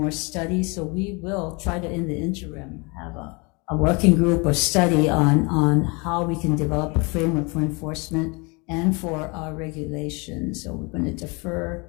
studies. So we will try to, in the interim, have a working group or study on how we can develop a framework for enforcement and for regulation. So we're going to defer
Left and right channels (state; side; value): quieter; right; 29.4 dB